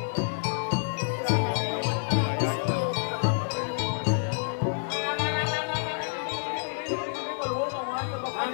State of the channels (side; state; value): right; silent; digital silence